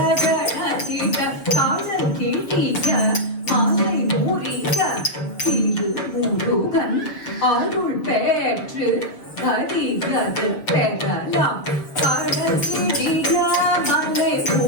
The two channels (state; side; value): late; right; 6.8 ms